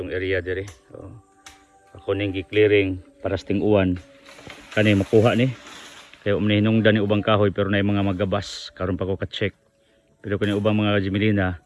area dire. So, ako ning gi-clearing para sa ting-uwan. Kani makuha ni. Kaya hinungdan ni ubang kahoy pero na mga magabas. Karon pa ko ka-check. Pero kani ubang mga Jimelina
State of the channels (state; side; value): identical; both; correlation 1.00